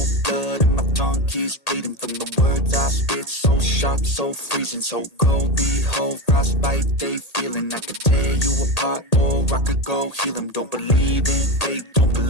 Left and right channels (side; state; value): right; late; 1.8 ms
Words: blood and my tongue keeps bleeding from the words I spit. So sharp, so freezing, so cold. Behold, frostbite they feeling. I could tear you apart or I could go heal them. Don't believe in fate, don't